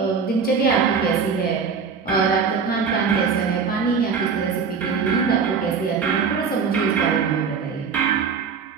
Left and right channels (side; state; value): left; quieter; 5.8 dB